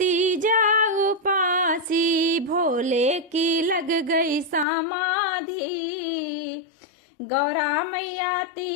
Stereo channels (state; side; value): drops out; right; at 4.7 s